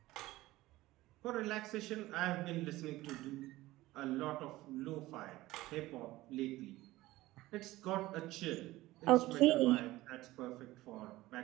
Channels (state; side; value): quieter; left; 17.7 dB